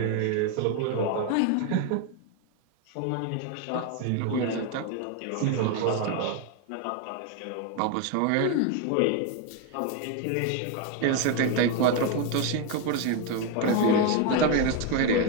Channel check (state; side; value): different; both; correlation 0.01